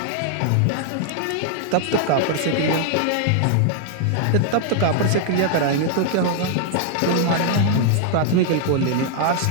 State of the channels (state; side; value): different; both; correlation -0.01